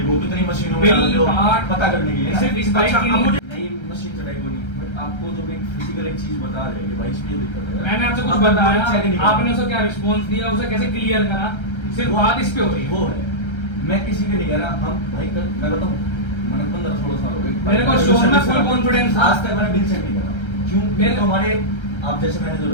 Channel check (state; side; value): late; right; 1.3 ms